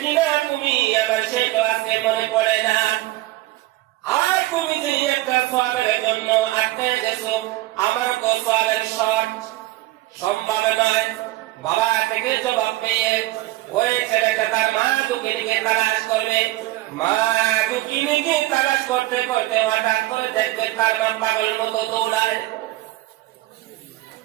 কিনা তুমি আমার সেই কথা মনে পড়ে না। আর তুমি যে একটা সওয়াবের জন্য আটকে গেছো, আমার তো সওয়াবের শর্ট সম্ভব নয়। বাবা থেকে জবাব পেয়ে ওই ছেলেটা তার মা দুঃখিনীকে তালাশ করবে। মা দুঃখিনীকে তালাশ করতে করতে হঠাৎ করে দেখবে তার মা পাগলের মতো দৌড়ায়,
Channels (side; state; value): left; quieter; 17.9 dB